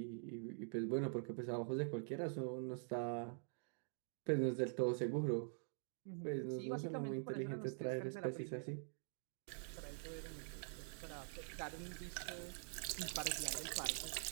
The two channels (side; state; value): left; silent; digital silence